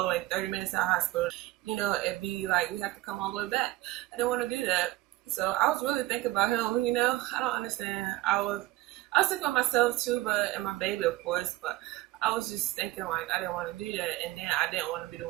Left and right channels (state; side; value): quieter; left; 17.5 dB